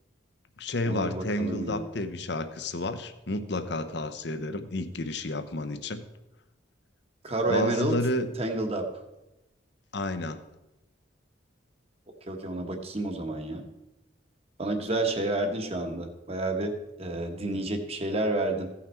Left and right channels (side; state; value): both; normal; correlation 0.31